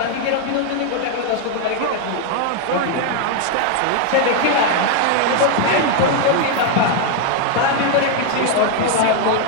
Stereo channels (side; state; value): both; different; correlation 0.00